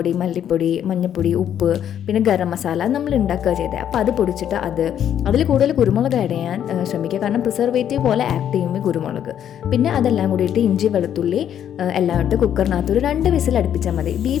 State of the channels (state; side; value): quieter; right; 9.8 dB